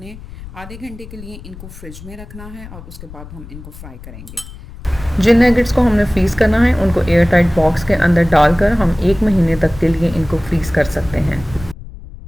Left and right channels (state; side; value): noise; left; rumble, 15 dB below the sound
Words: आधे घंटे के लिए इनको फ्रिज में रखना है और उसके बाद हम इनको फ्राई करेंगे। जिन नगेट्स को हमने फ्रीज़ करना है उनको एयर टाइट बॉक्स के अंदर डालकर हम 1 महीने तक के लिए इनको फ्रीज़ कर सकते हैं।